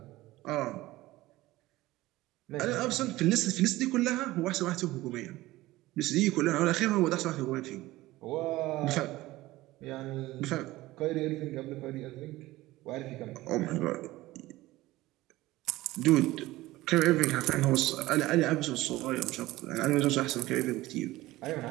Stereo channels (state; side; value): quieter; left; 17.9 dB